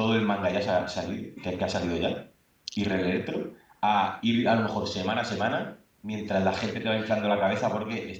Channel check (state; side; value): identical; both; correlation 1.00